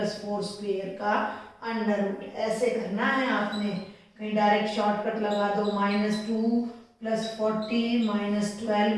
स्क्वेयर का अंडर रूट। ऐसे करना है आपने, कहीं डायरेक्ट शॉर्टकट लगा दो, -2 +40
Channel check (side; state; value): both; identical; correlation 1.00